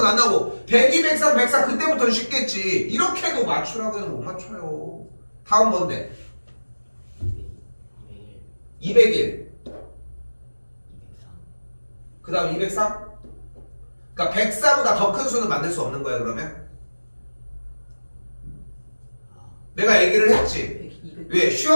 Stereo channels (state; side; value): inverted; both; correlation -1.00